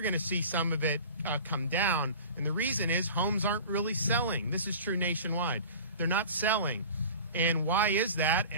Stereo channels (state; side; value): inverted; both; correlation -0.39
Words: going to see some of it come down, and the reason is homes aren't really selling. This is true nationwide. They're not selling. And why is that?